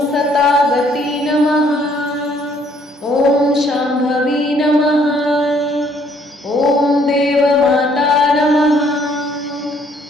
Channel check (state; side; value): normal; both; correlation 0.64